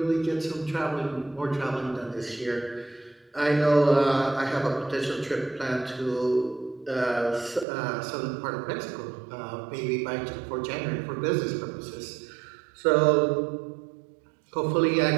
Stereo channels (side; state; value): left; drops out; at 7.7 s